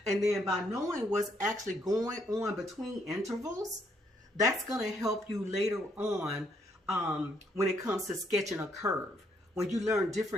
And then by knowing what's actually going on between intervals, that's going to help you later on when it comes to sketching a curve, when you learn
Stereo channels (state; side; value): normal; both; correlation 0.72